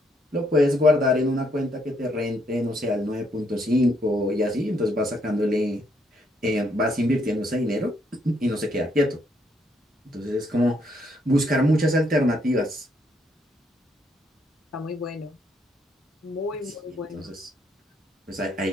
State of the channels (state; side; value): normal; both; correlation 0.73